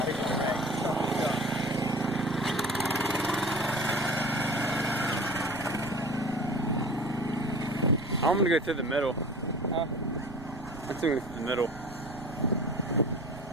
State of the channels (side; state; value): right; noise; rumble, 16 dB below the sound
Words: think it's okay. I'm gonna go through the middle. Huh? I'm gonna go through the middle.